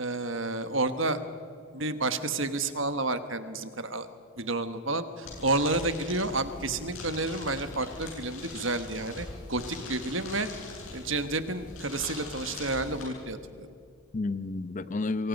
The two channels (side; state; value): both; normal; correlation 0.00